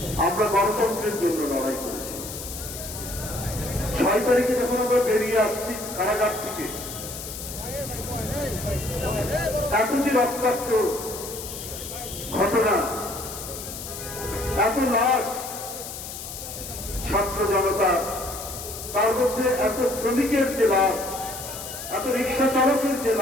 আমরা গণতন্ত্রের জন্য লড়াই করেছি। 6 তারিখে যখন আমরা বেরিয়ে আসছি কারাগার থেকে, এত যে রক্তাক্ত ঘটনা, এত লাশ, ছাত্র জনতা, তার মধ্যে এত শ্রমিকের যে লাশ, এত রিক্সা চালকের যে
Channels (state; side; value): noise; left; hiss, 9 dB below the sound